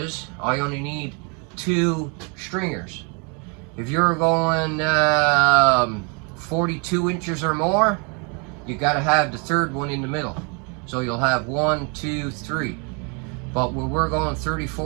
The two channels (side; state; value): left; quieter; 34.7 dB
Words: I only need 2 stringers. If you're going 42 inches or more, you got to have the third one in the middle. So you'll have 1, 2, 3. But when we're going